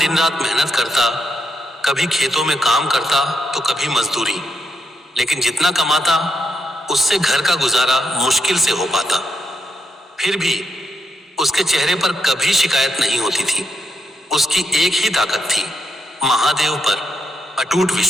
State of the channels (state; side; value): normal; both; correlation 0.81